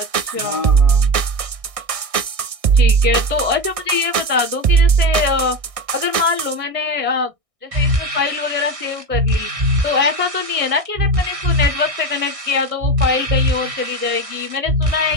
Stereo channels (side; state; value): left; late; 1.6 ms